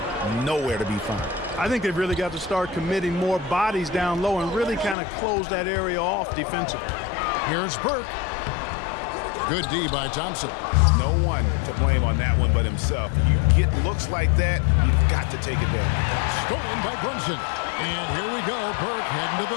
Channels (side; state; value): right; drops out; at 5.0 s